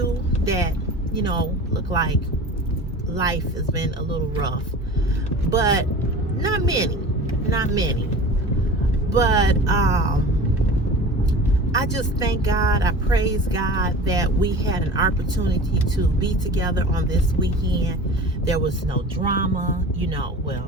that, looked like life has been a little rough, but not many. But I just thank God, I praise God that we had an opportunity to be together on this weekend. There was no drama,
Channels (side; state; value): both; normal; correlation 0.37